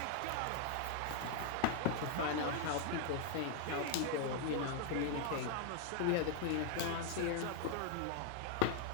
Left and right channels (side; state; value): both; different; correlation 0.00